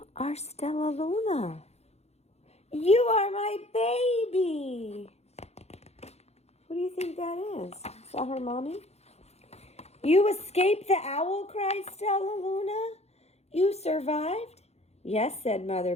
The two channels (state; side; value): late; right; 0.31 ms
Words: are Stellaluna. You are my baby. Who do you think that is? Is that her mommy? You escaped the owl, cried Stellaluna. You survived? Yes, said Mother